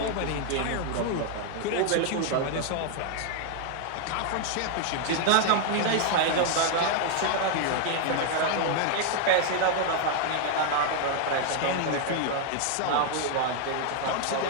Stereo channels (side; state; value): both; different; correlation 0.00